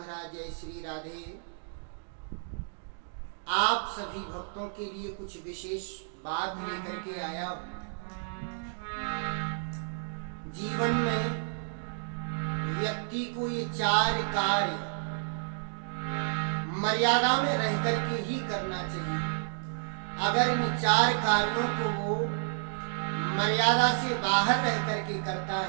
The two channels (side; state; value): left; silent; digital silence